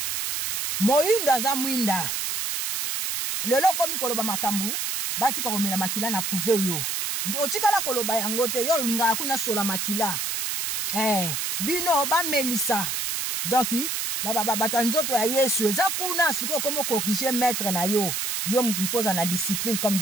moindo aza mwinda lelo komi koloba makambu batika komela makila na prouve yo otikala koloba yango te yo ngala kuna sola makila bino ba melisa donc bata nzoto ya Yesu eza kuna siko komo corriger maître na yo mtu faut na discipline comme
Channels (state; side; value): noise; right; hiss, 1 dB below the sound